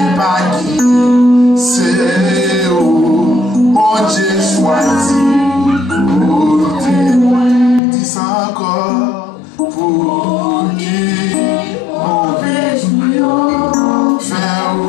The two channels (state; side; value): drops out; right; at 7.8 s